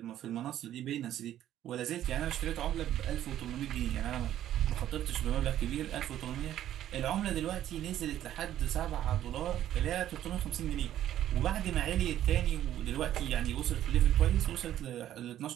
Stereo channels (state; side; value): quieter; left; 12.0 dB